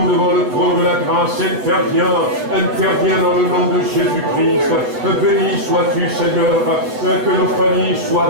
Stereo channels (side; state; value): left; late; 7.9 ms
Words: devant le trône de la grâce. Interviens dans le nom de Jésus-Christ. Béni sois-tu, Seigneur, que nos familles